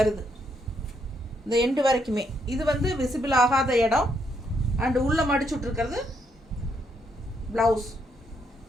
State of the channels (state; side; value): normal; both; correlation 0.75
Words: இந்த எண்டு வரைக்குமே இது வந்து விசிபிள் ஆகாத இடம். அண்டு உள்ளே மடிச்சுட்ருக்கிறது ப்ளவுஸ்.